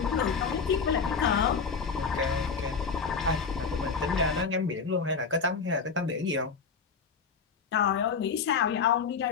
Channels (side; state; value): right; quieter; 5.4 dB